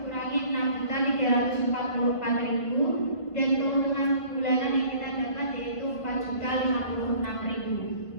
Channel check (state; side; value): late; right; 1.5 ms